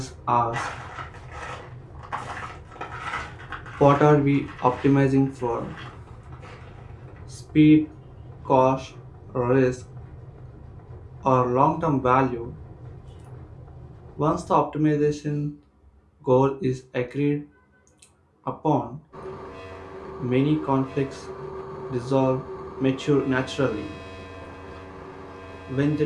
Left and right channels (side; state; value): both; identical; correlation 1.00